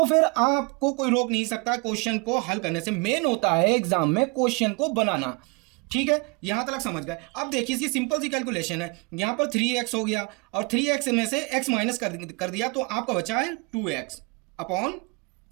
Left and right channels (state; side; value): quieter; left; 30.8 dB